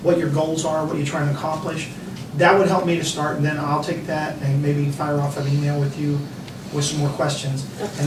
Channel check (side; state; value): both; identical; correlation 1.00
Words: what your goals are, what you're trying to accomplish, that would help me to start, and then I'll take that and maybe fire off an email with you with some more questions. And